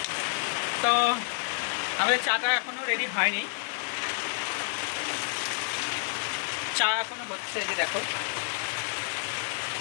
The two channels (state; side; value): silent; right; 58 dB below the other